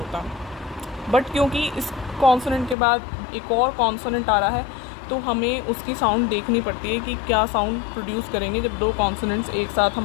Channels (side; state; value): right; drops out; at 2.8 s